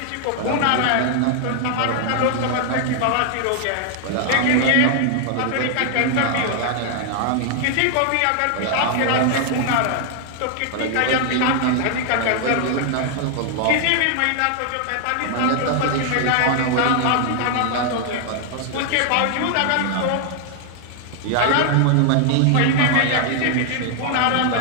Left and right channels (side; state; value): both; different; correlation 0.00